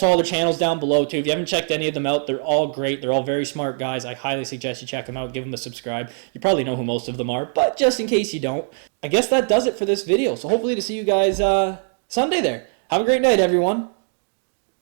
all their channels down below too. If you haven't checked any of them out, they're all great. They're all very smart guys. I highly suggest you check them out. Give them a subscribe. You probably know who most of them are, but just in case you don't, I guess that does it for this video. So hopefully to see you guys Sunday there. Have a great night, everyone.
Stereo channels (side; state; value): left; silent; 64 dB below the other